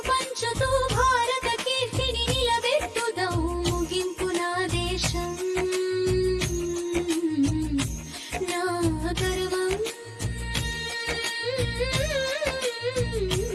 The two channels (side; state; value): both; identical; correlation 1.00